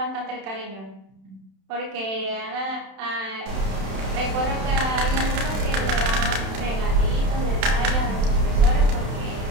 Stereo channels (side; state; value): left; late; 31 ms